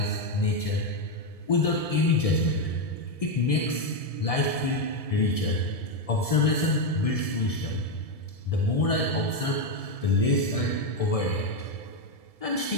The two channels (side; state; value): right; late; 1.7 ms